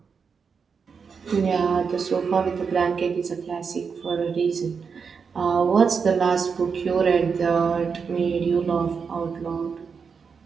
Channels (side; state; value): left; quieter; 5.8 dB